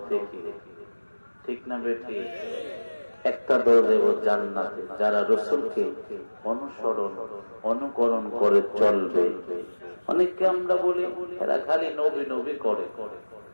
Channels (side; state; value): both; inverted; correlation -1.00